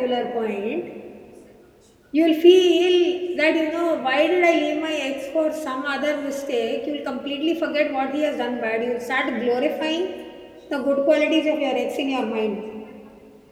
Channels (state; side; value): identical; both; correlation 1.00